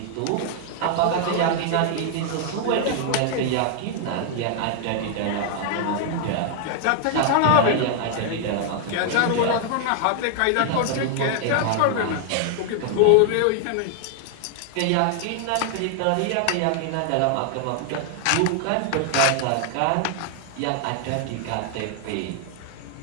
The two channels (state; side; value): different; both; correlation 0.00